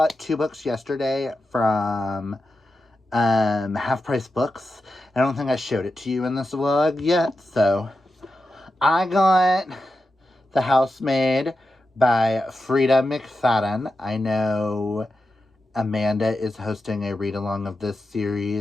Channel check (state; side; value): normal; both; correlation 0.90